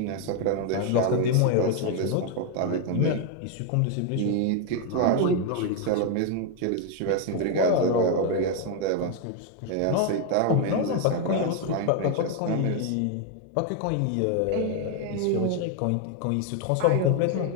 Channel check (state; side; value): different; both; correlation 0.01